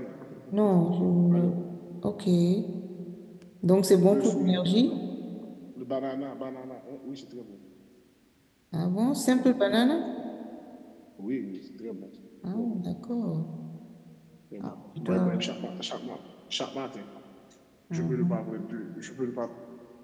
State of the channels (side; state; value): both; identical; correlation 1.00